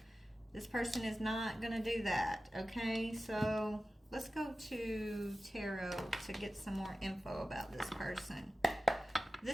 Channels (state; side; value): normal; both; correlation 0.94